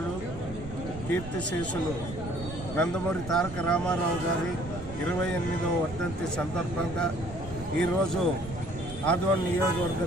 కీర్తిశేషులు నందమూరి తారక రామారావు గారి 28వ వర్ధంతి సందర్భంగా ఈరోజు ఆదోని నియోజకవర్గ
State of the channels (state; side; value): noise; right; rumble, 13 dB below the sound